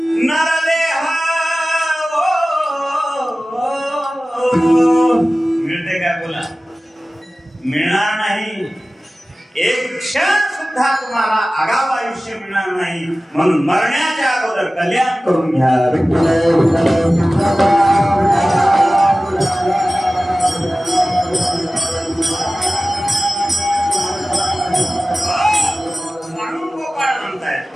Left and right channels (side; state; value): both; normal; correlation 0.96